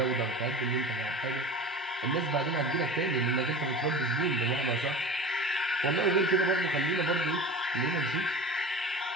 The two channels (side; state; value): both; normal; correlation 0.34